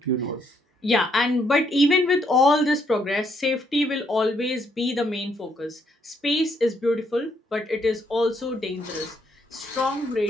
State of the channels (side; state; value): both; normal; correlation 0.72